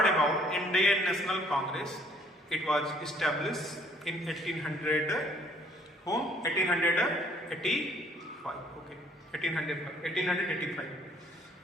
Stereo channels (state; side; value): normal; both; correlation 0.60